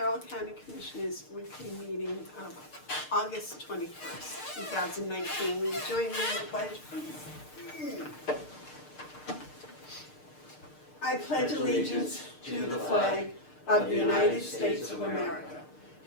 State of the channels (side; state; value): right; late; 6.6 ms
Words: County Commissioners' weekly meeting of August 21st, 2019. Will you join me in the pledge, please? I pledge allegiance to the flag of the United States of America